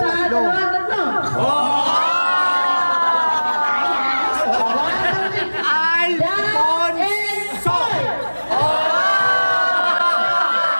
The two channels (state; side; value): inverted; both; correlation -1.00